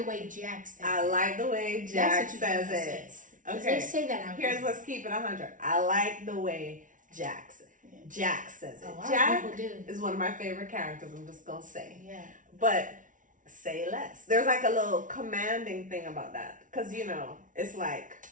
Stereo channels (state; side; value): late; left; 0.38 ms